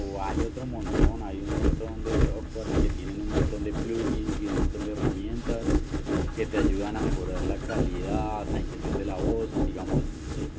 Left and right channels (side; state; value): both; identical; correlation 1.00